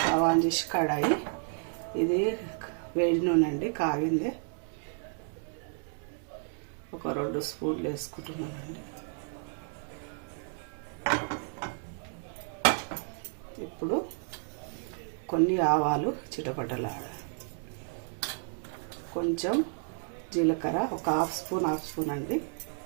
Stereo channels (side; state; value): left; silent; 57 dB below the other